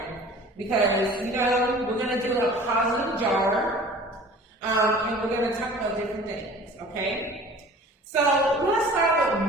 Because, we're going to do a positive jar, and we're going to talk about different things, okay? So let's start with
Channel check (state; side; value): normal; both; correlation 0.45